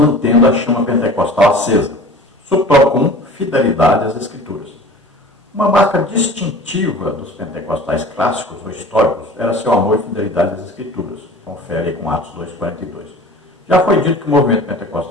a chama pentecostal acesa. Subtópico 1, fidelidade às Escrituras. Uma marca distintiva dos pentecostais clássicos ou históricos era seu amor e fidelidade às Escrituras. Confere aí com Atos 2,42. Já foi dito que o movimento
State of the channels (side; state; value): both; normal; correlation 0.41